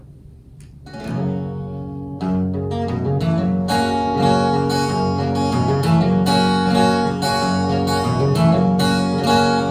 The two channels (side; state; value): both; identical; correlation 1.00